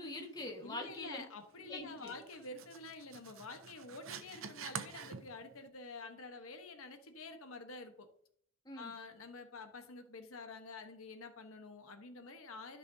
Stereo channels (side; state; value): both; normal; correlation -0.01